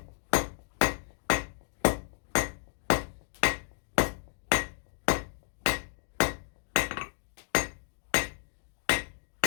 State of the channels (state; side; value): silent; right; 57 dB below the other